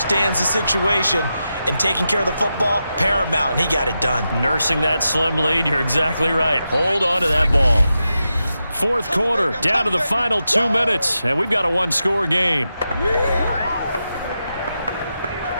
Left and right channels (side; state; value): both; inverted; correlation -0.89